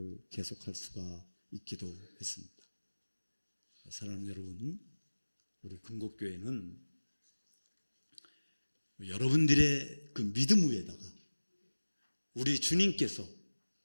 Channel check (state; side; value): inverted; both; correlation -1.00